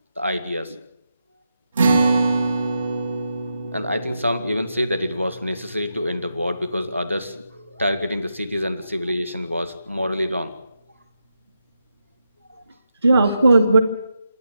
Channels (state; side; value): inverted; both; correlation -0.86